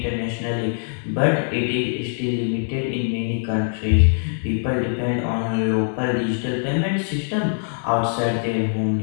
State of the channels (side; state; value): right; silent; digital silence